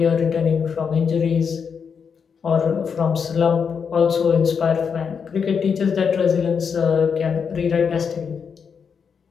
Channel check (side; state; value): right; quieter; 6.4 dB